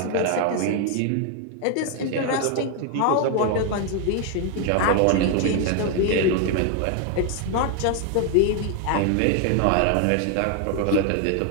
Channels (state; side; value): different; both; correlation 0.01